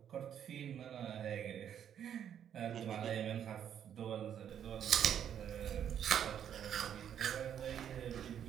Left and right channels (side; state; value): left; quieter; 9.2 dB